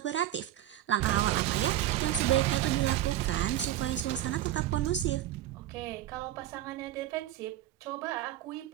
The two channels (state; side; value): quieter; left; 13.1 dB